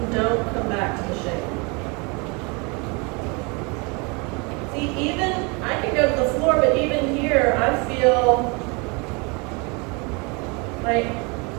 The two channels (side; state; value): left; quieter; 30.4 dB